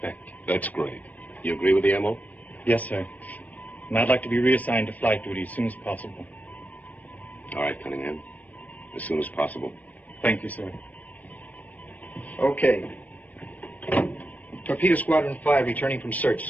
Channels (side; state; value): right; late; 0.076 ms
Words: That's great. You agree with the MO? Yes, sir. And I'd like to be reassigned to flight duty as soon as possible. All right, Cunningham. As soon as possible. Thank you, sir. Okay. Torpedo Squadron 5 returning from search,